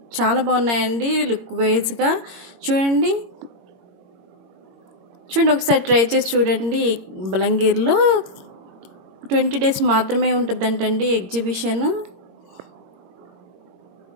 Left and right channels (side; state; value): left; late; 22 ms